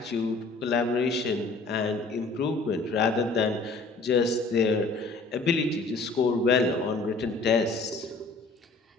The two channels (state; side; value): quieter; right; 3.6 dB